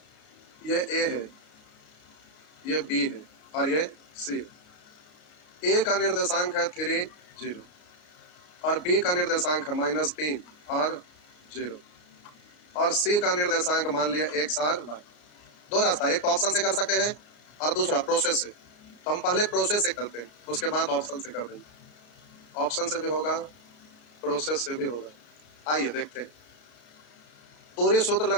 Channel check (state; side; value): late; right; 34 ms